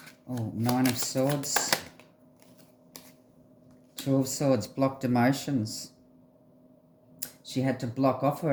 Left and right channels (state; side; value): identical; both; correlation 1.00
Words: Oh, Nine of Swords. Two of Swords, blocked emotions. She had to block off